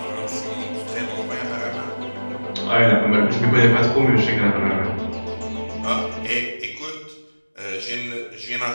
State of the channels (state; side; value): inverted; both; correlation -1.00